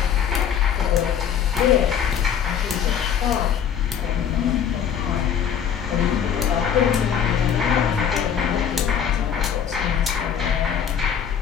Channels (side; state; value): right; quieter; 8.2 dB